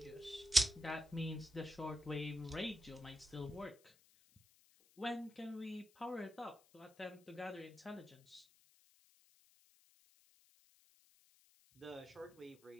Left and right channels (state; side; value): noise; left; hiss, 27 dB below the sound